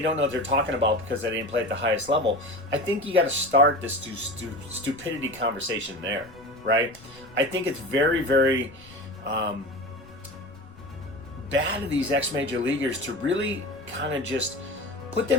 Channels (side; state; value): left; noise; rumble, 23 dB below the sound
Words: know what they're talking about because they didn't play at the highest level, I think you got to start this stupidity conversation there, right? I think it's very, very bad of these ex-major leaguers to really kind of just put